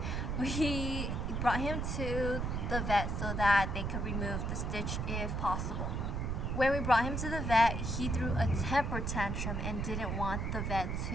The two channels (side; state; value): right; noise; rumble, 1 dB below the sound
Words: we brought him to the vet so that they could remove the stitch if possible. When we brought him to the vet, he threw a temper tantrum and didn't want the vet